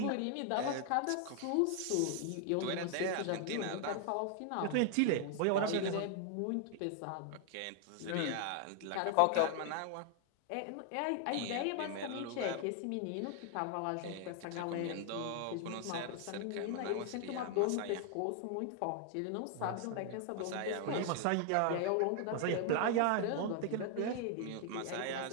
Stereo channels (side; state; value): both; different; correlation 0.00